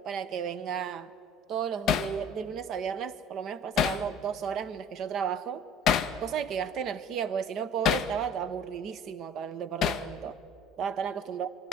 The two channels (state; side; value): normal; both; correlation 0.46